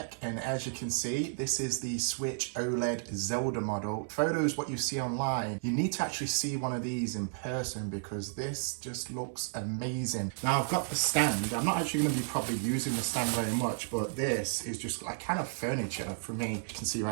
and as you can see, this is the Switch OLED Zelda model. Photos, what you see online, you need to actually see one of these in person because this just looks amazing. Now I've got the stand. I'm not actually going to be probably using the stand very much, but this is just like kind of furniture for me. You can see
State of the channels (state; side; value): silent; left; digital silence